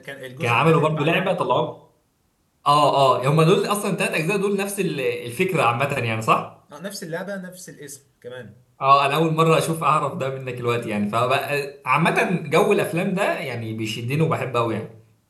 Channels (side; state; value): both; identical; correlation 1.00